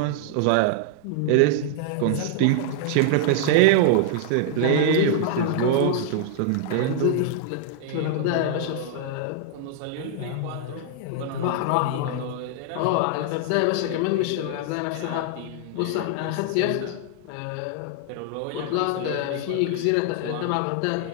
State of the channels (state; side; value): different; both; correlation -0.01